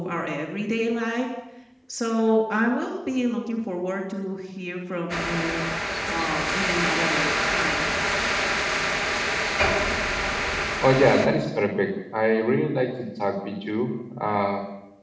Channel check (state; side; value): identical; both; correlation 1.00